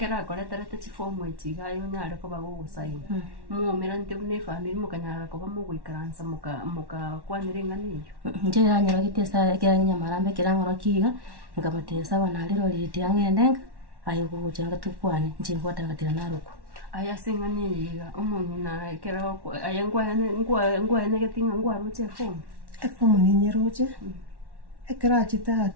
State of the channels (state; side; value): late; left; 1.1 ms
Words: koretera te form echiga yo nyare ko bagusaina mumira nte une family mukanyara ko bamuguikaransa muka kwanire ngani nje yanyara kitesa kiranya marambe kirangoro kiga ngabatesa banaliro liti angendenga ayo kugucanga tukwane nje ngwatangatira naruko aya singani yiga umuntu na ekera ko ayangwa ne getinga ngwa ruche form ni nyeroche ekera chita